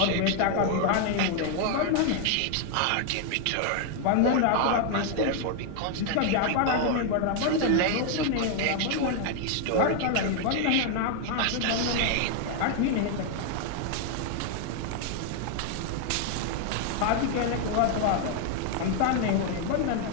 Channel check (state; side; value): different; both; correlation 0.00